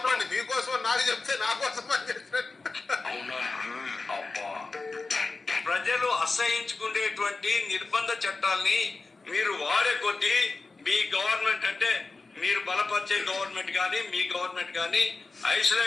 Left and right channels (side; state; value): right; quieter; 3.8 dB